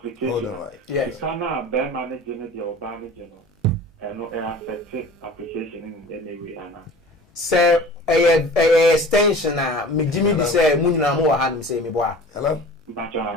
Hold on, right. Yes. You cannot bear managing or managing and no affected application in any way. Sir, a extension me Jimmy di say munina mo wa han say me boa. Hello.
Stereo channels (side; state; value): both; normal; correlation 0.42